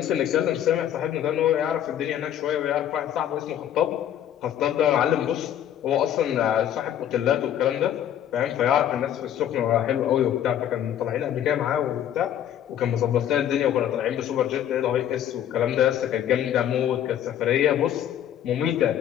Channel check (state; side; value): quieter; right; 10.7 dB